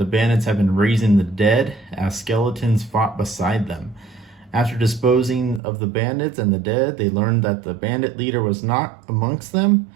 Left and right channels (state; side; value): drops out; left; at 5.6 s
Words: bandits had been raising the dead as skeletons fought beside them. After disposing of the bandits and the dead, they learned that the bandit leader was not amongst them,